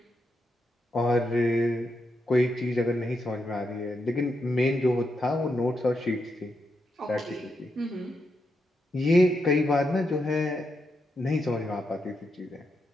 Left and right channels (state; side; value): normal; both; correlation 0.83